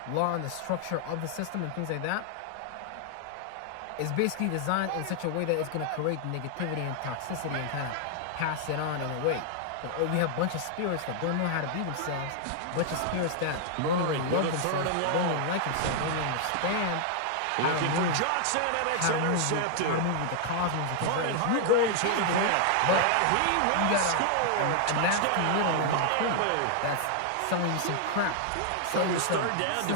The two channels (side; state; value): both; different; correlation 0.00